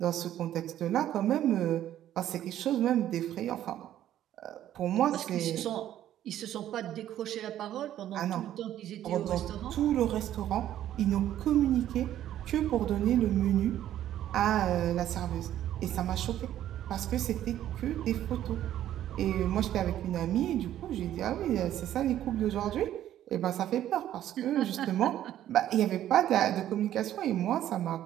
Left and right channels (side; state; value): left; quieter; 12.0 dB